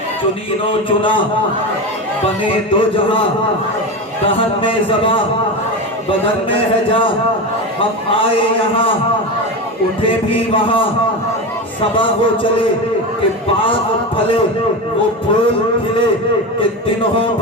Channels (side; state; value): both; normal; correlation 0.21